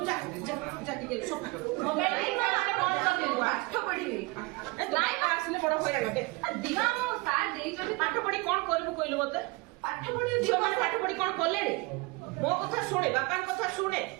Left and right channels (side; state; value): left; quieter; 25.4 dB